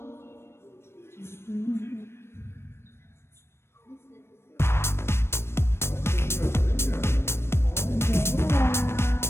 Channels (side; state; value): right; late; 0.12 ms